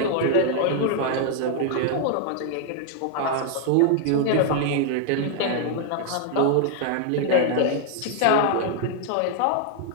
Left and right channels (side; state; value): both; different; correlation 0.00